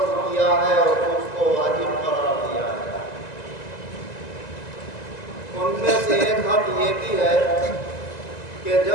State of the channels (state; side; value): late; right; 1.9 ms